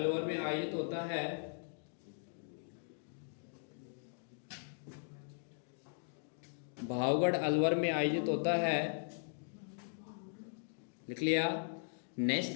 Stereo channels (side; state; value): right; silent; digital silence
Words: में आयोजित होता है। भावगढ़ अलवर में आयोजित होता है, लिख लिया।